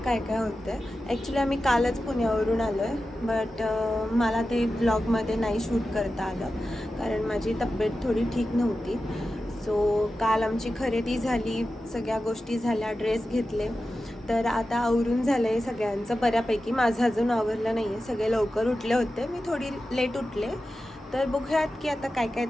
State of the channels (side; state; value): both; normal; correlation 0.93